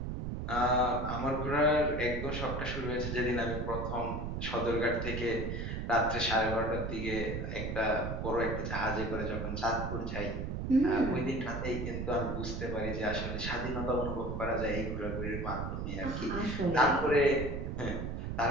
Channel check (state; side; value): noise; right; rumble, 4 dB below the sound